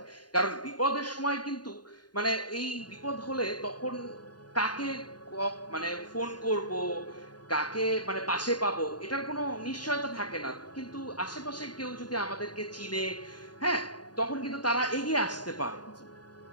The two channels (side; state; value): right; late; 0.70 ms